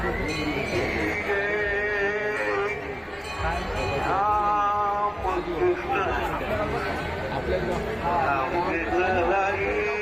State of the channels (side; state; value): both; identical; correlation 1.00